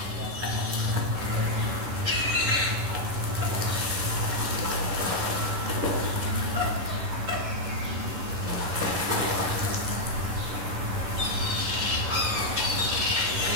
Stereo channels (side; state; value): left; late; 11 ms